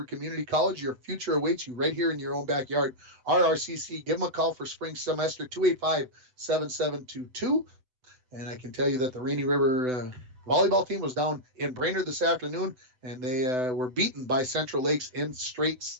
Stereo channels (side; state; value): left; late; 7.9 ms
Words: Community College. Your future awaits you right here in your own backyard. RRCC, give them a call for spring semester, 285-7722. And I can tell you that the Rainy River volleyball team was down in Brainerd this afternoon, and they were beaten by Central Lakes in straight